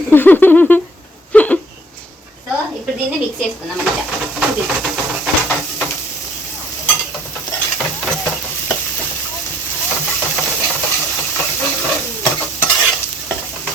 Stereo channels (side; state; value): both; normal; correlation 0.61